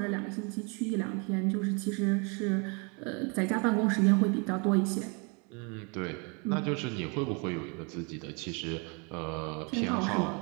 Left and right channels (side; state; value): left; quieter; 33.6 dB